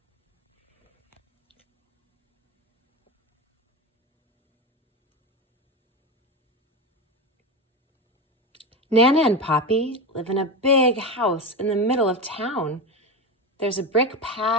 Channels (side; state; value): both; normal; correlation 0.18